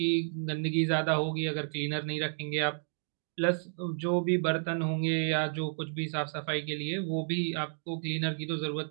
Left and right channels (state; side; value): silent; left; digital silence